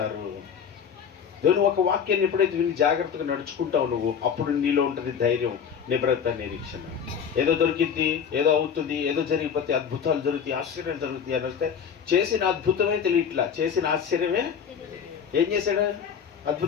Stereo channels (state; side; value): quieter; right; 7.3 dB